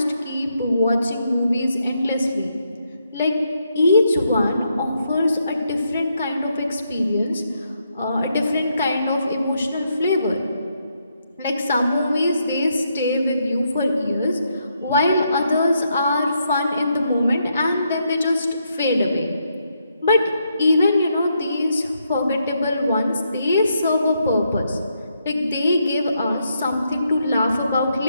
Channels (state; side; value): inverted; both; correlation -0.79